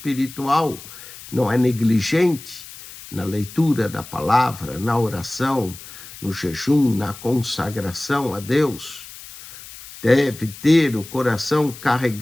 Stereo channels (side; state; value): left; noise; hiss, 16 dB below the sound